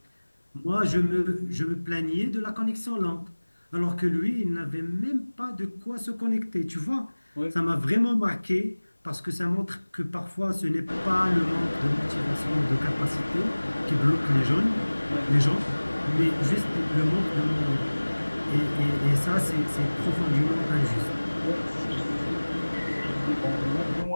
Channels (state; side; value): inverted; both; correlation -1.00